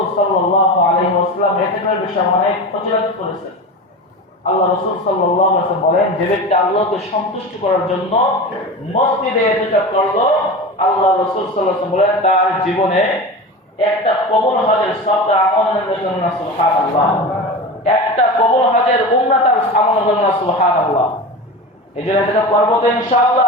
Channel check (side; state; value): both; normal; correlation 0.28